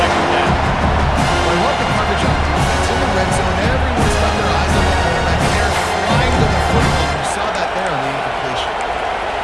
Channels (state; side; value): identical; both; correlation 1.00